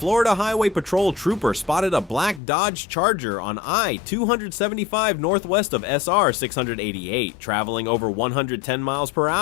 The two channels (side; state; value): right; drops out; at 2.4 s